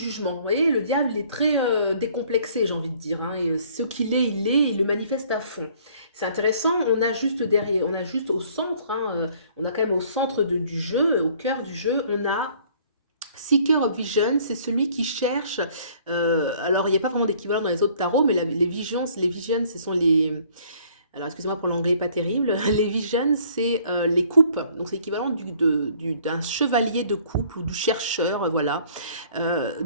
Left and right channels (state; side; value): inverted; both; correlation -0.58